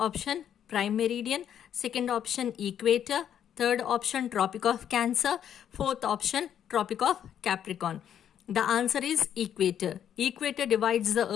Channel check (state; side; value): quieter; right; 9.5 dB